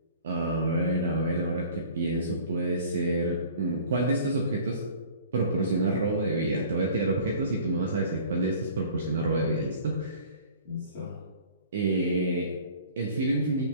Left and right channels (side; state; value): both; inverted; correlation -0.47